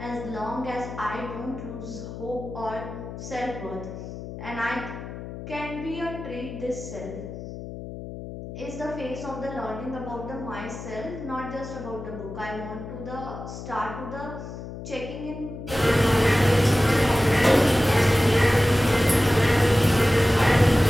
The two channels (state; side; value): noise; left; hum, 10 dB below the sound